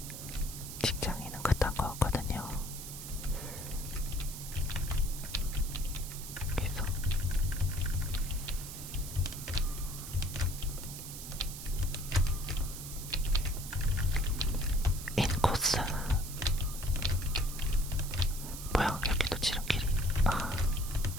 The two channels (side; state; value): right; noise; hiss, 10 dB below the sound